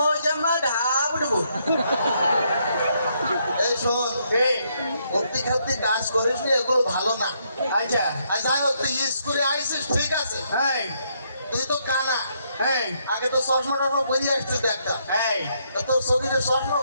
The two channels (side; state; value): both; inverted; correlation -0.74